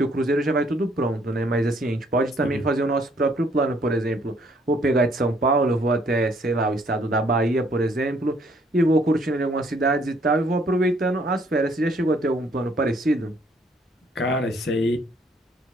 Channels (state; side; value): normal; both; correlation 0.65